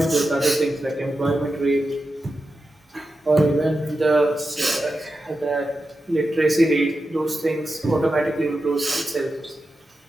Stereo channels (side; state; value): both; normal; correlation 0.90